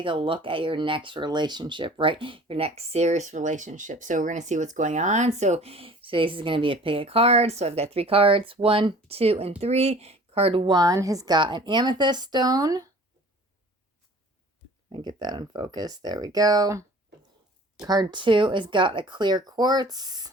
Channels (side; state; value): both; normal; correlation 0.47